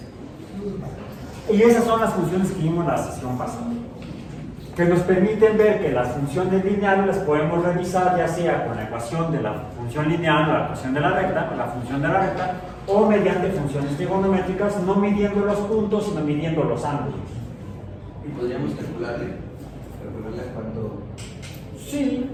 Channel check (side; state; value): both; identical; correlation 1.00